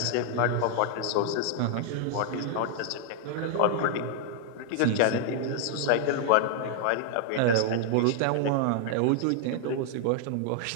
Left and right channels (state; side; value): different; both; correlation 0.00